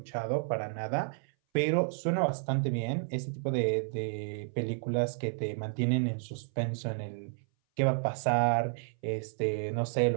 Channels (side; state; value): left; silent; 57 dB below the other